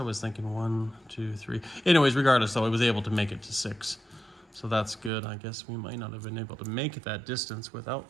was thinking 1, 2, 3. Anyways, regardless though, I was able to make it to 6. So that's good. I guess we might not have been able to make it that distance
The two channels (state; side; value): drops out; left; at 5.1 s